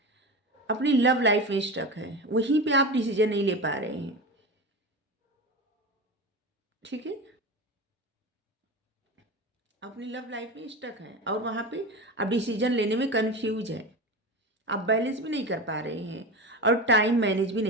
अपनी लव लाइफ में स्टक है, वहीं पे आप डिसीजन नहीं ले पा रहे हैं। ठीक है। अपनी लव लाइफ में स्टक है और वहाँ पे आप डिसीजन लेने में कंफ्यूज है, आप बैलेंस भी नहीं कर पा रहे हैं और टाइम मैनेज भी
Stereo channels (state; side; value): normal; both; correlation 0.25